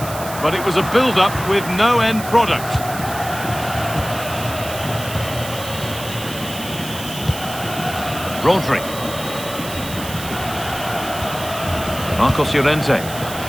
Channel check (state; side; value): noise; right; hiss, 11 dB below the sound